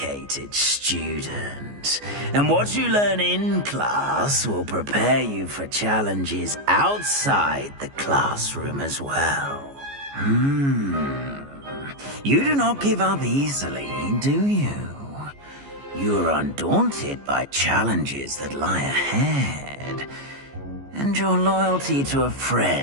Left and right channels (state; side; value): late; left; 14 ms